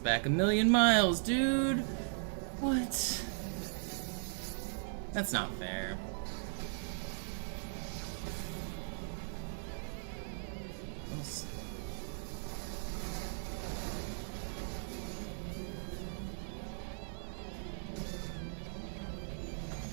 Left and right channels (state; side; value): silent; left; digital silence